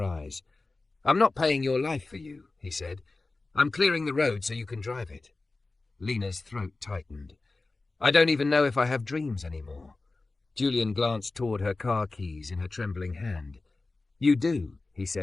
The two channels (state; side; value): quieter; right; 3.4 dB